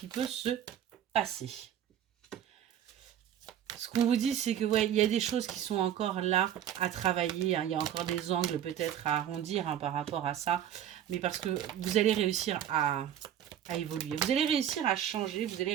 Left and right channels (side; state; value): left; quieter; 10.3 dB